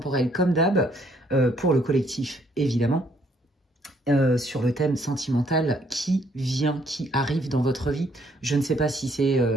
comme d'hab pour le collectif, évidemment. Sur le thème sentimental qui vient, qui arrive dans votre vie. Je ne sais pas si c'est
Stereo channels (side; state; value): both; normal; correlation 0.67